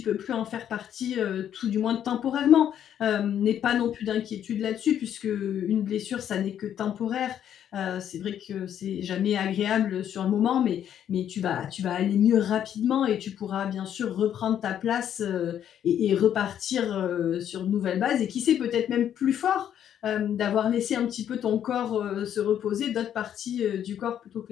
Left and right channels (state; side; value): quieter; right; 9.9 dB